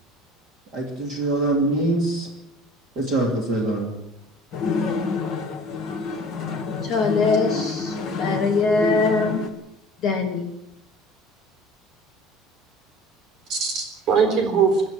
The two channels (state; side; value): normal; both; correlation 0.44